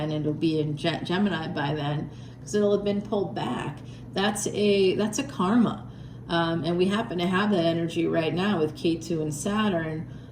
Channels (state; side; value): identical; both; correlation 1.00